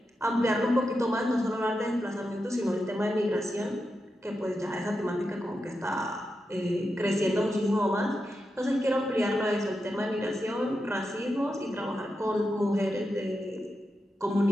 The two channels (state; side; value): normal; both; correlation 0.88